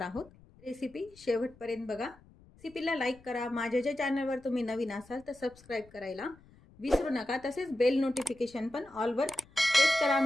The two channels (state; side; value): noise; left; rumble, 26 dB below the sound